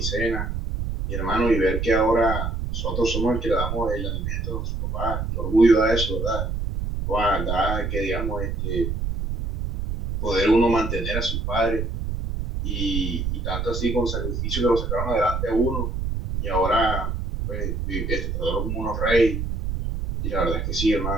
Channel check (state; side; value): noise; right; rumble, 2 dB below the sound